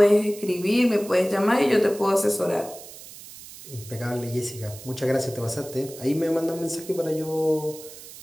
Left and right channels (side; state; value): right; noise; hiss, 16 dB below the sound